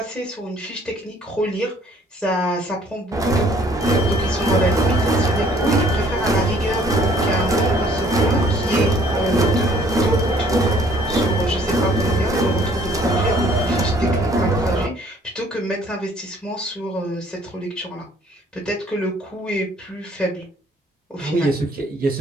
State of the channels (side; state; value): both; normal; correlation 0.59